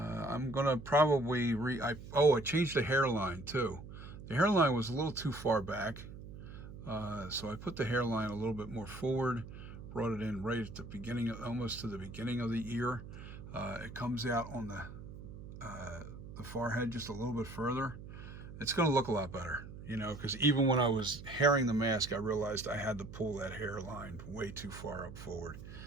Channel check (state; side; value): noise; right; hum, 13 dB below the sound